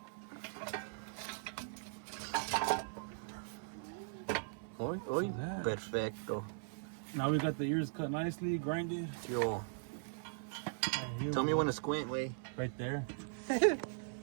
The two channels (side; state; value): left; silent; 52 dB below the other